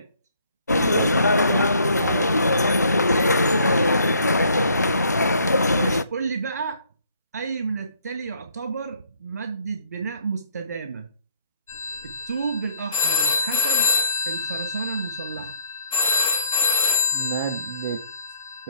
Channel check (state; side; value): inverted; both; correlation -0.61